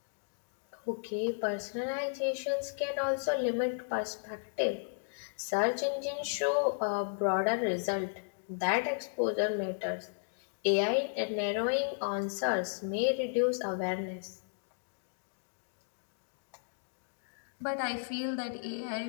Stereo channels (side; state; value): right; silent; digital silence